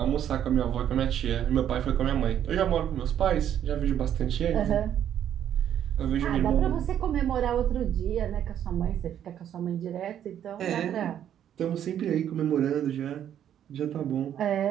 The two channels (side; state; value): left; quieter; 10.1 dB